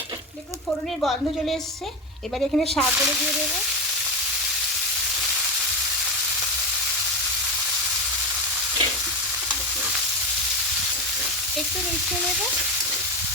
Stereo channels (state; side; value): normal; both; correlation 0.17